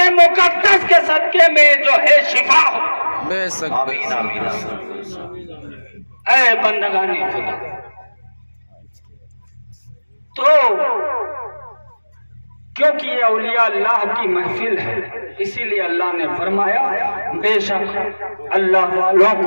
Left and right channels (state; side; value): inverted; both; correlation -1.00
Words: مقدس کے صدقے میں جو ہے شفا ہو۔ بے شک، آمین آمین۔ اے بندگان خدا، تو کیونکہ یہ اولیاء اللہ کی محفل ہے، اسی لیے اللہ نے فرمایا بے شک اللہ والوں